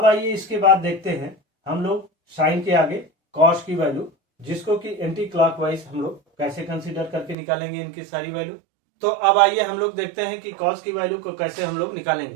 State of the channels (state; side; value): drops out; left; at 7.4 s